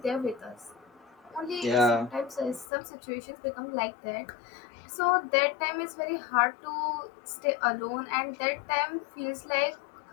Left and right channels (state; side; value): drops out; right; at 2.7 s